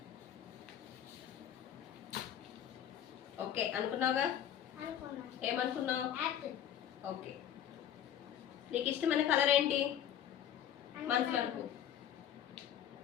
ఓకే అనుకున్నావుగా? అనుకున్నా. ఏమనుకున్నావు? యాపిల్. ఓకే. నీకు ఇష్టమైన కలర్ ఏంటి మనసులో అనుకో.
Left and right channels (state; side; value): quieter; right; 10.1 dB